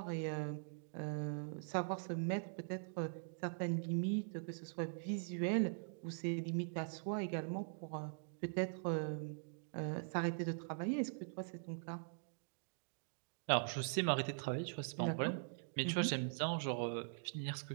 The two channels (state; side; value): silent; left; digital silence